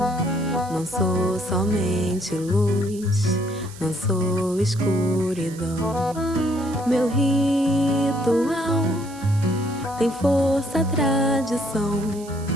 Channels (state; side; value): noise; right; hiss, 19 dB below the sound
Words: Não sou somente luz, não sou escuridão. Meu ritual tem força, tradição.